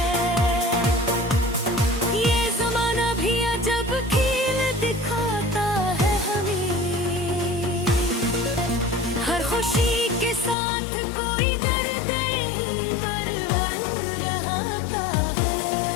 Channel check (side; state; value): right; drops out; at 10.6 s